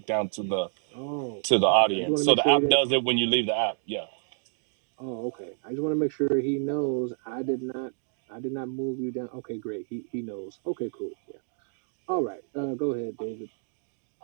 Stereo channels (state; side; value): silent; left; 59 dB below the other